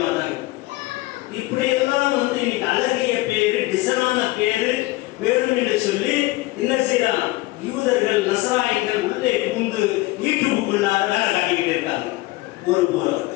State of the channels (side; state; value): right; quieter; 20.1 dB